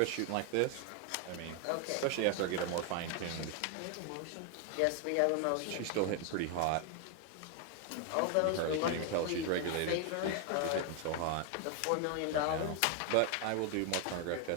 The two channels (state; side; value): different; both; correlation 0.01